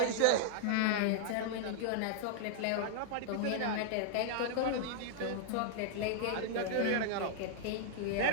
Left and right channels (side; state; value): both; different; correlation -0.01